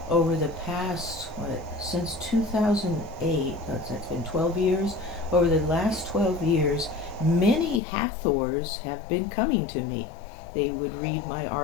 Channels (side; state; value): right; drops out; at 7.8 s